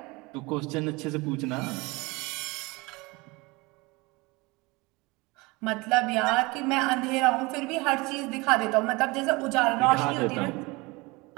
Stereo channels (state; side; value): quieter; left; 24.5 dB